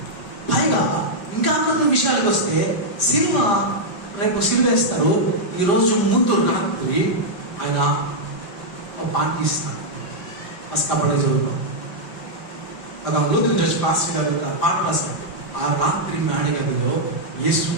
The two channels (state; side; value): late; right; 5.0 ms